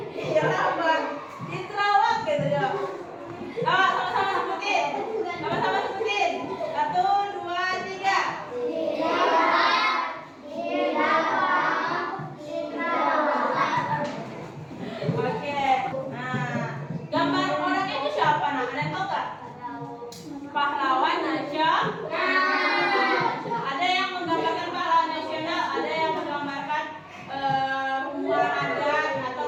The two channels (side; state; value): both; identical; correlation 1.00